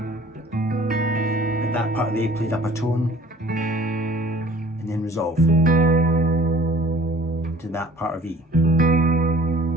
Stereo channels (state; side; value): normal; both; correlation 0.50